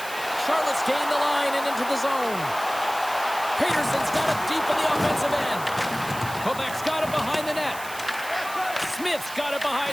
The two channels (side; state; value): right; noise; hiss, 13 dB below the sound